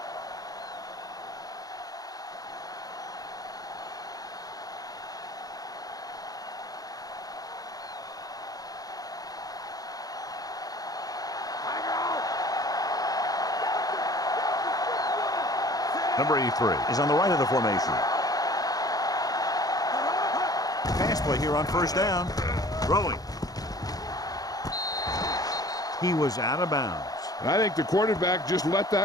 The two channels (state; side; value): late; right; 0.18 ms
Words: Number 83 is on the right of the formation. Pass play here on first down. Throwing. He was out of bounds. And I think the quarterback just let